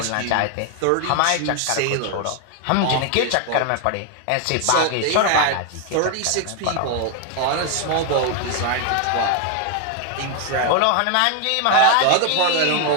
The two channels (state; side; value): different; both; correlation 0.00